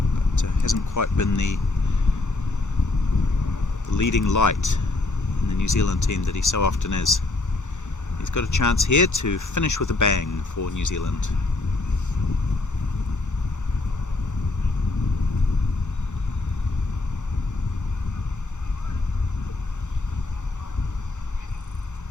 But hasn't quite been the leading light in the New Zealand team that he so often is. He's got a chance here to finish with a bang for New Zealand.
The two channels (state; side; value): quieter; right; 3.2 dB